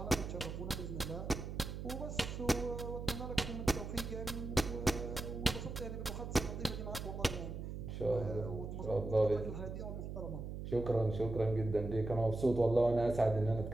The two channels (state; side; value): noise; right; hum, 7 dB below the sound